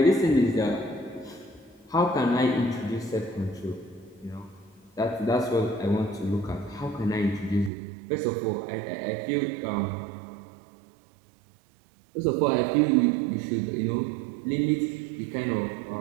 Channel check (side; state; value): left; drops out; at 7.7 s